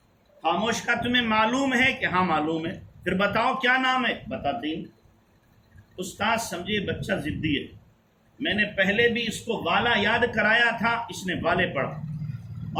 خاموش. کا تمہیں معلوم ہے کہ ہاں معلوم ہے. پھر بتاؤ کیا نام ہے. بتاتے ہی. استاد سمجھے بچہ ضدی ہے، میں نے پہلے بھی اس کو والا یاد کرایا تھا، اس نے والے پڑھا،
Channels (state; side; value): identical; both; correlation 1.00